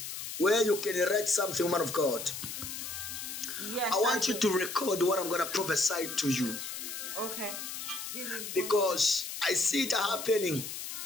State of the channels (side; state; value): left; noise; hiss, 7 dB below the sound